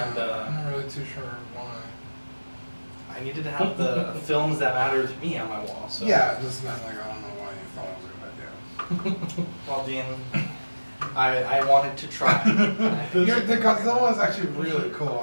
And, I'm not really too sure why. I needed to have the films that matter to me on my wall. So. Yeah, it just meant like, I don't know why you thought it was a good idea. Well, Dean, I wanted to try. The Godzilla one is actually really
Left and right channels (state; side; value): inverted; both; correlation -1.00